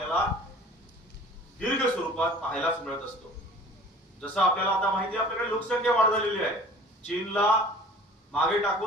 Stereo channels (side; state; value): both; normal; correlation 0.45